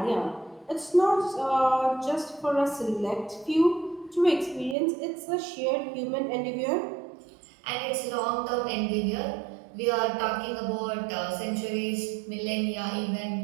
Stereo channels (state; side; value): drops out; left; at 4.8 s